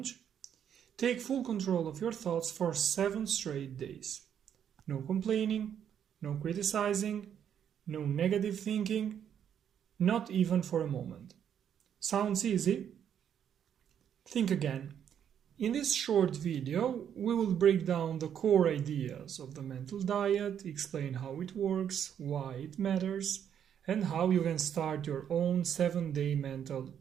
Take full control of your thoughts for 7 straight days. No complaining, no criticizing, no negative thinking, not even for a moment. Sounds easy? Think again. In this short video, we will break down the core ideas of the mental diet, explain how it works, why it matters, and how you can start your own 7-day mental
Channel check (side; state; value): left; quieter; 8.9 dB